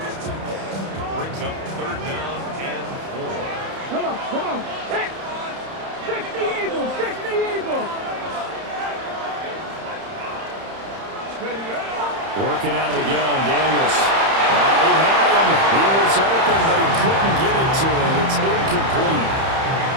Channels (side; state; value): left; late; 31 ms